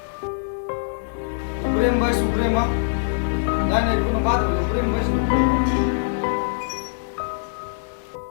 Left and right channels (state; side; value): silent; right; digital silence